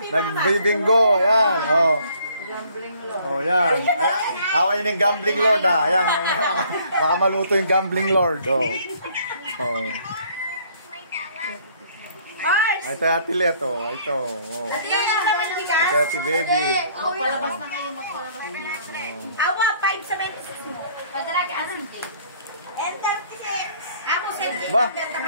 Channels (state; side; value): inverted; both; correlation -0.60